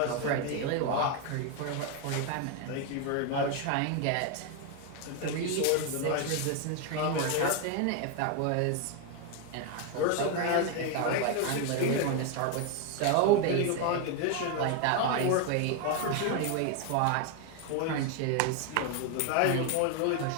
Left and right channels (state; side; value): different; both; correlation 0.01